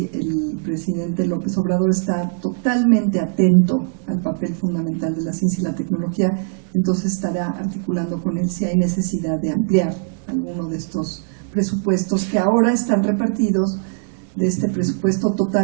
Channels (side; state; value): left; silent; digital silence